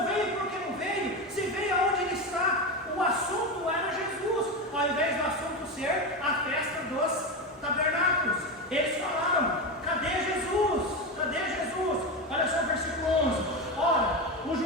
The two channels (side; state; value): both; normal; correlation 0.17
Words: veio, por que não veio? Se veio, aonde ele está? O assunto era Jesus, ao invés do assunto ser a festa dos tabernáculos. Eles falaram: cadê Jesus? Cadê Jesus? Olha só o versículo 11. Ora, os